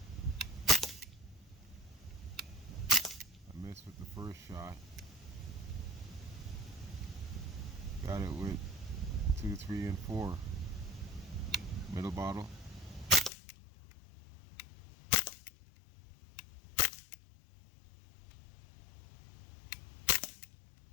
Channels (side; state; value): right; drops out; at 13.3 s